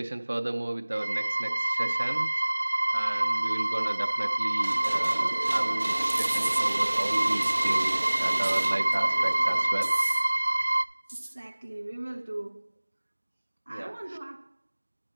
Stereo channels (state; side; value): inverted; both; correlation -1.00